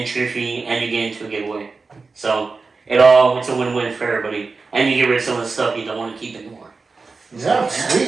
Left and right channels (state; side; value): quieter; left; 4.2 dB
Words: fee, and you get into a giveaway. So it's a win-win for everybody, and you get rid of some of the stuff you don't want to keep anymore. Yeah,